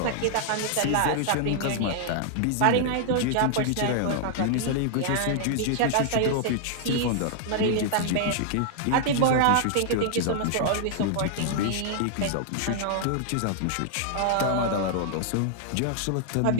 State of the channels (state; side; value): different; both; correlation -0.01